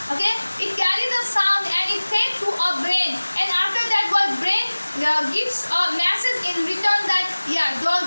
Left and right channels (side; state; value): both; inverted; correlation -1.00